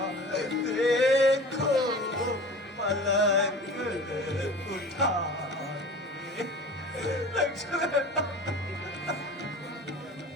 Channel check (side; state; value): both; normal; correlation 0.39